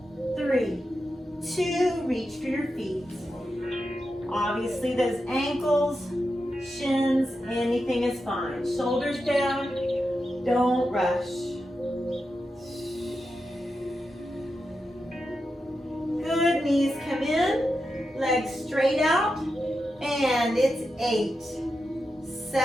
3, 2, reach for your feet. Obviously those ankles, shins, anything is fine. Shoulders down, don't rush. Good, knees come in, legs straight out, and it's 8,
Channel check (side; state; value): both; normal; correlation 0.88